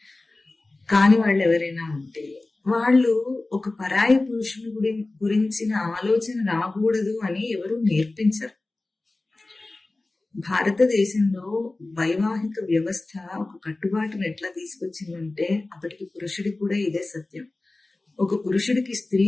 కాని వాళ్ళు ఎవరైనా ఉంటే వాళ్ళు ఒక పరాయి పురుషుని గురించిన ఆలోచన రాకూడదు అని ఎవరు నేర్పించరు. భారతదేశంలో వైవాహిక వ్యవస్థ ఒక కట్టుబాటును ఎట్లా తీసుకొచ్చిందంటే, అప్పటికి పురుషుడికి కూడా ఇదే సత్యం. ఒక పురుషుడికి స్త్రీ,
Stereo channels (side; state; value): right; quieter; 3.1 dB